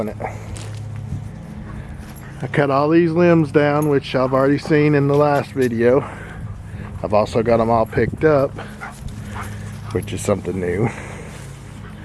it. I cut all these limbs down, which I've already seen in the last video. I've also got them all picked up, which is something new.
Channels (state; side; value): identical; both; correlation 1.00